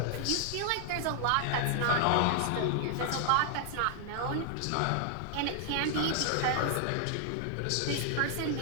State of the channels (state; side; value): different; both; correlation 0.00